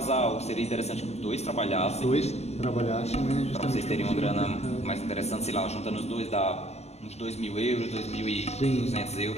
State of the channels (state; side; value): late; right; 0.31 ms